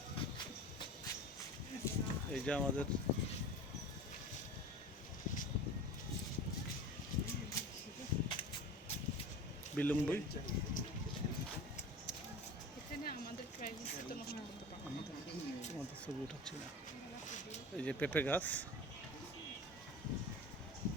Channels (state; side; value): normal; both; correlation 0.35